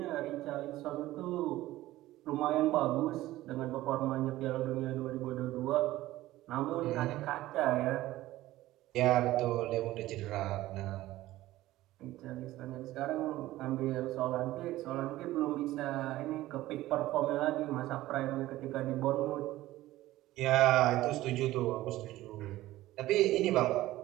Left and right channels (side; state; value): left; quieter; 16.2 dB